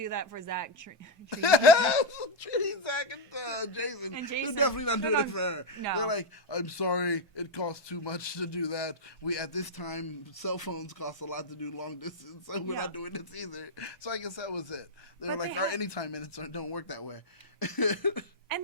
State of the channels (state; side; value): normal; both; correlation 0.01